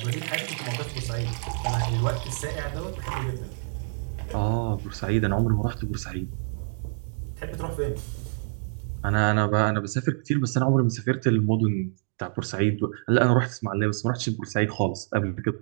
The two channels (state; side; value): silent; left; digital silence